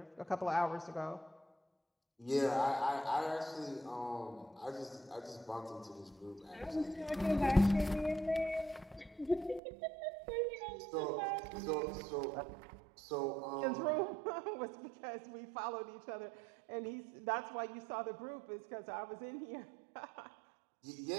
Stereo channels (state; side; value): drops out; left; at 9.6 s